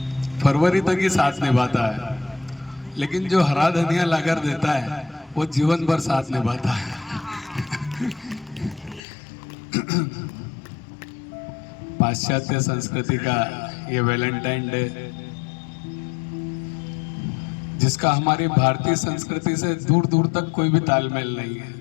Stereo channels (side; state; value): right; drops out; at 9.0 s